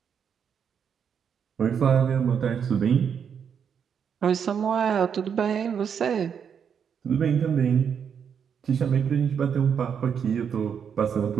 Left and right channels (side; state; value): left; quieter; 7.4 dB